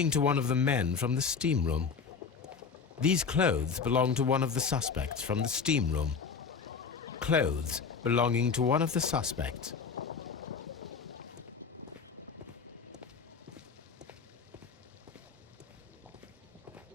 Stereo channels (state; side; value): quieter; right; 5.7 dB